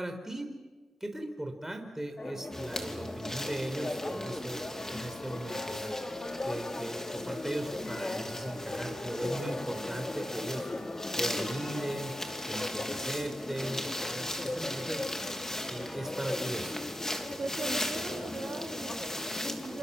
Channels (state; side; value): normal; both; correlation 0.89